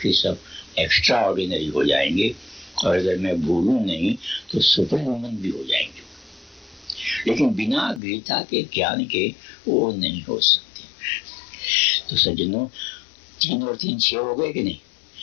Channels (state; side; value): drops out; right; at 8.0 s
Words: के सब एक्स्ट्रा ऑर्डिनरी हो जाएंगे, और अगर मैं भूलूं नहीं तो सुपर ह्यूमन भी हो जाएंगे। लेकिन बिना गीता के ज्ञान के वो नहीं हो सकते। तो सज्जनों, 3 और 3 6 हो गए कि नहीं।